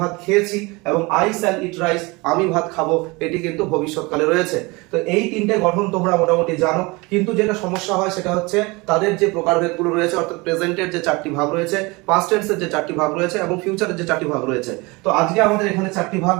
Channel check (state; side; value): quieter; left; 25.1 dB